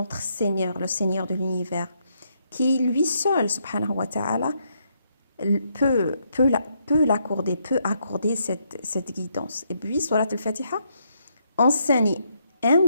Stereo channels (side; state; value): both; inverted; correlation -0.76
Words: Seigneur, le Seigneur de l'univers, qui lui seul, subhanahu wa ta'ala, peut accorder cette guidance. Et puis, Surat al-Fatiha enseigne